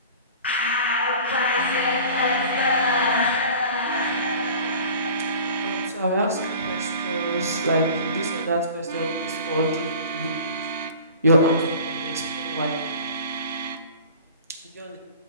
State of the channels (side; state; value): both; inverted; correlation -0.42